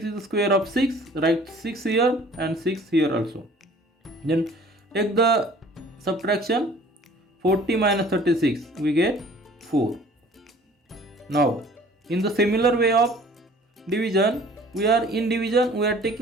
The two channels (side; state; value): both; normal; correlation 0.51